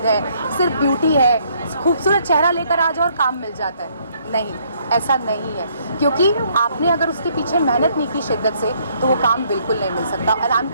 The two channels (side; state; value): both; inverted; correlation -0.67